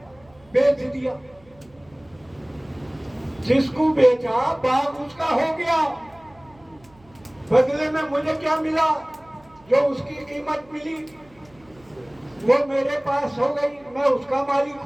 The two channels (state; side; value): noise; right; hum, 28 dB below the sound